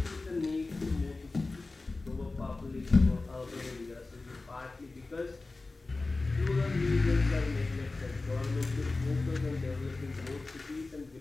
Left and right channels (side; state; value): right; quieter; 3.4 dB